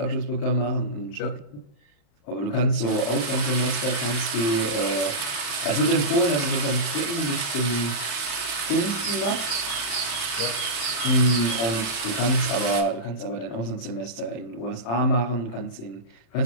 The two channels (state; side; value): late; right; 35 ms